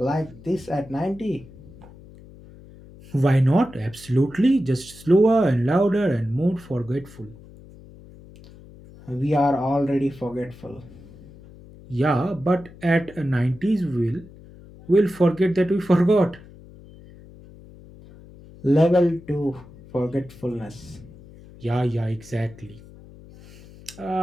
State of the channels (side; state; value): left; noise; hum, 20 dB below the sound